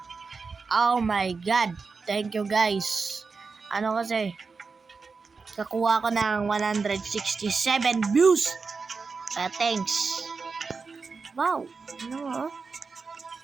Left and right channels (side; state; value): left; quieter; 4.7 dB